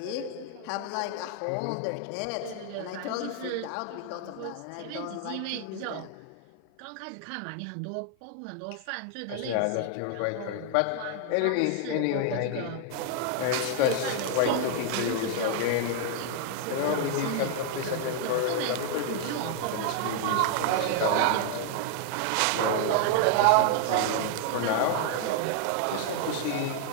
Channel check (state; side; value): different; both; correlation 0.00